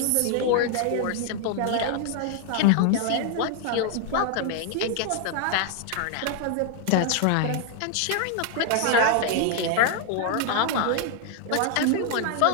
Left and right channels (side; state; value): both; different; correlation 0.00